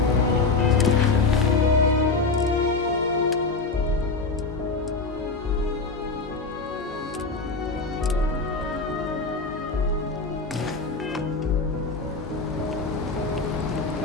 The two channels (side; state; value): right; quieter; 3.9 dB